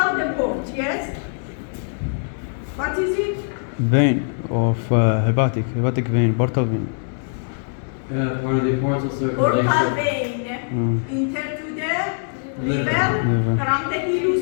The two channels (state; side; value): silent; right; 64 dB below the other